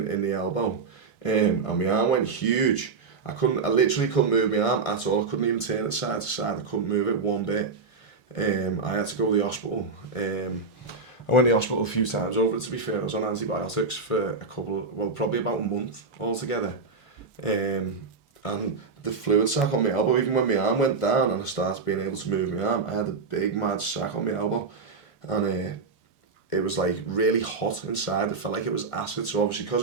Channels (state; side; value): quieter; left; 4.4 dB